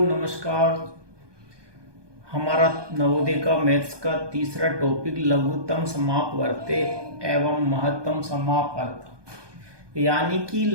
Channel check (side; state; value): left; late; 1.2 ms